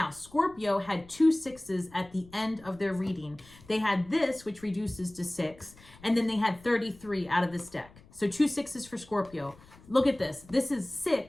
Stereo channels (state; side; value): noise; left; rumble, 24 dB below the sound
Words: Scorpio had 2 6s at the end of their reading. They had this, which reduces to 6, and then they had 33 out of this deck. So 2 6s for Scorpio. Look at this. This is